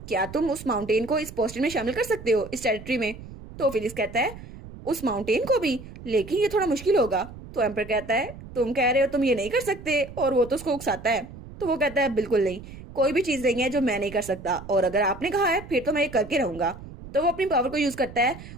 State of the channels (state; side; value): noise; right; rumble, 15 dB below the sound